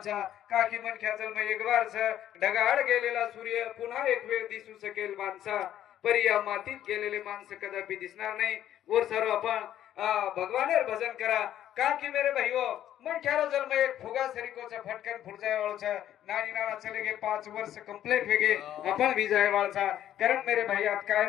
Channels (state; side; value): quieter; right; 11.5 dB